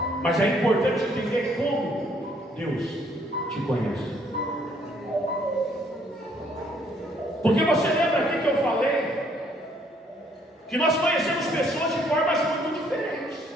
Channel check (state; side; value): normal; both; correlation 0.66